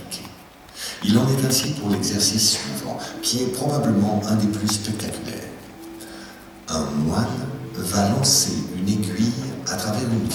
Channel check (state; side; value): identical; both; correlation 1.00